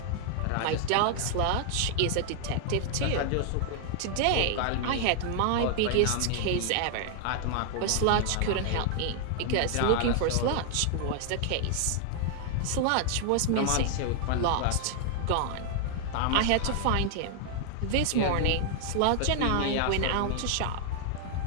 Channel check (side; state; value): both; different; correlation 0.00